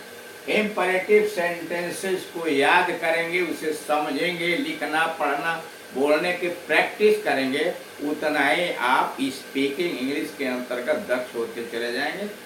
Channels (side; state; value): both; identical; correlation 1.00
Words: इम्परेटिव सेंटेंसेस को याद करेंगे, उसे समझेंगे, लिखना पढ़ना बोलने की प्रैक्टिस करेंगे, उतना ही आप स्पीकिंग इंग्लिश के अंतर्गत दक्ष होते चले जाएंगे।